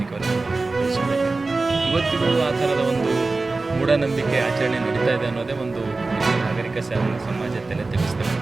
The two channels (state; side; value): quieter; left; 3.5 dB